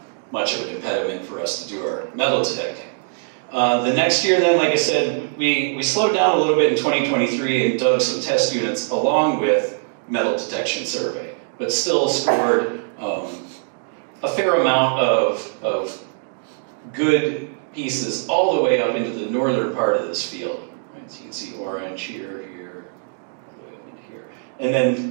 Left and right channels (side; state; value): left; silent; 64 dB below the other